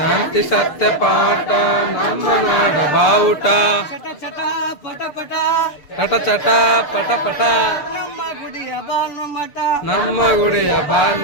ಸತ್ಯ ಪಾಠ ನಮ್ಮ ನಾಡ ಬಾವುಟ, ಚಟ ಚಟ ಪಟ ಪಟ ಚಟ ಚಟ ಪಟ ಪಟ ನಮ್ಮ ಗುಡಿಯ ಭಾನುಮಠ, ನಮ್ಮ ಗುಡಿಯ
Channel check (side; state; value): right; late; 6.8 ms